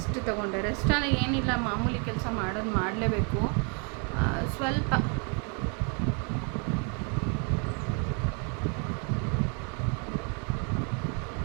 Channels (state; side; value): quieter; left; 37.5 dB